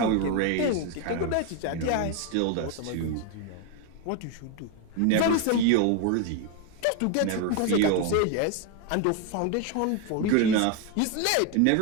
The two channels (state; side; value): different; both; correlation 0.01